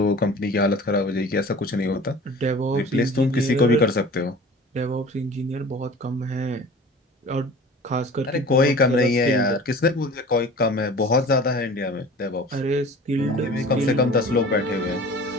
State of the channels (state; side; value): normal; both; correlation 0.42